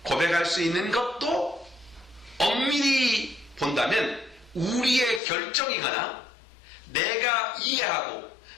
고백할 수 있는 것도 엄밀히 본다면 우리의 결정이거나 내가 이해하고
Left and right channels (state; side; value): drops out; right; at 5.2 s